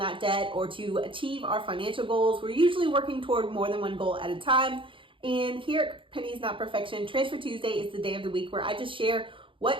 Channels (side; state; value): left; late; 0.25 ms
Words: debt or to achieve our financial goals. We're usually working toward more than one goal at a time. And here at Pennies Not Perfection, Transfer Tuesday is the day of the week where I just share